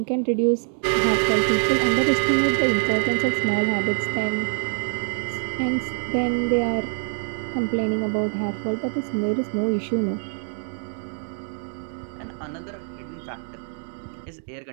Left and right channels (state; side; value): silent; left; 62 dB below the other